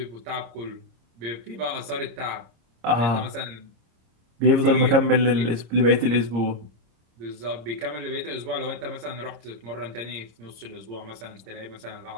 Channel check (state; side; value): late; left; 26 ms